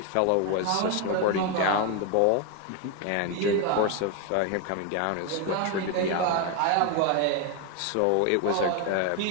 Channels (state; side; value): different; both; correlation 0.01